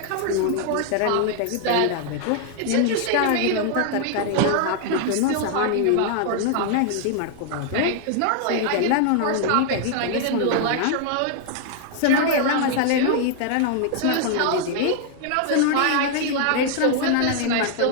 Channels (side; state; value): both; different; correlation 0.00